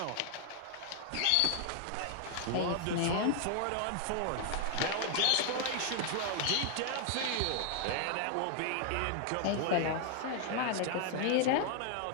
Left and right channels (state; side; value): different; both; correlation 0.00